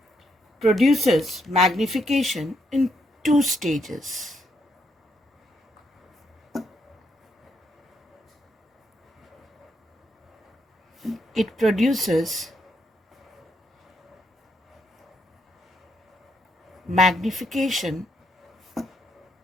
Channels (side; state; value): both; normal; correlation 0.77